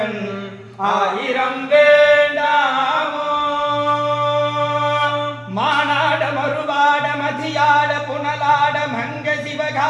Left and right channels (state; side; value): identical; both; correlation 1.00